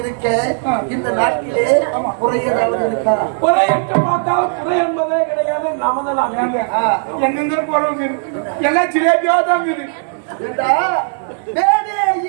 இருக்க இந்த நாட்டிலே குறை ஏதாவது இருக்கா? குறை என்று பார்த்தால் குறை என்பதே கிடையாது. நமது நாங்க எங்க போறவங்க எல்லாம் சிலேபியா தான் மேலே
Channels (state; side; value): silent; left; digital silence